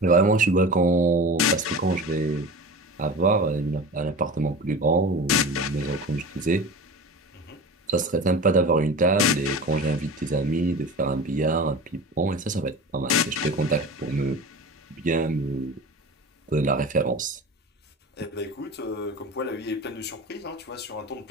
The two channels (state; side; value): normal; both; correlation 0.33